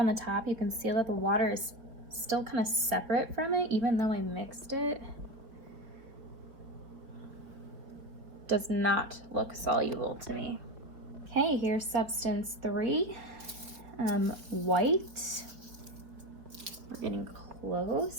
the top. You can see that the water is still kind of separate from it, even though I mixed it. Does not look soluble to me. Okay, here's substance 3. White. We're getting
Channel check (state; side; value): late; left; 4.1 ms